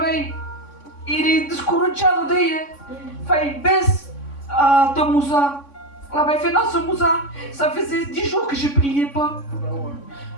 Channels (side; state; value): right; late; 3.6 ms